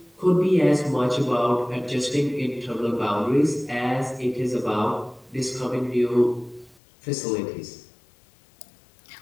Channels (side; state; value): right; drops out; at 6.8 s